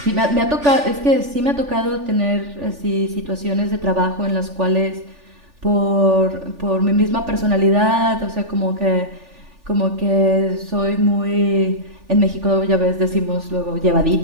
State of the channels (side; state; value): left; late; 3.4 ms